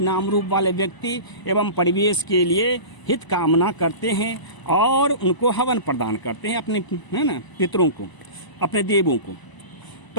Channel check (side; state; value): right; late; 1.0 ms